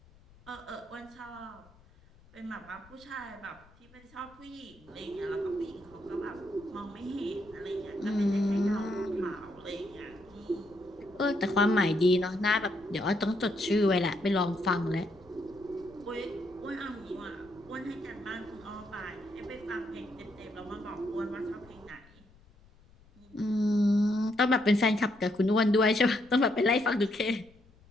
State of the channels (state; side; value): noise; left; rumble, 27 dB below the sound